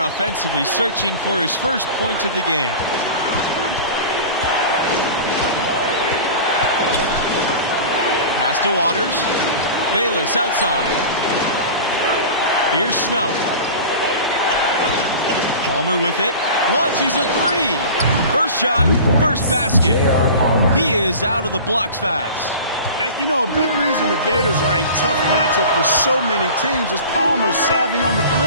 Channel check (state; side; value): inverted; both; correlation -0.36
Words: offensively, searching for his first points of the game. Pass to Waters. Bayless outside. Here's Snow. Palmer with it. Launches a three. First shot, first basket. He is out of the blocks fast. You know, a big reason the Gators are a tough matchup for so many teams is Palmer's savvy on the